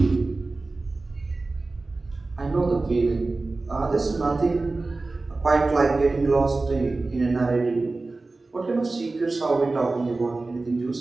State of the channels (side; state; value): left; quieter; 3.4 dB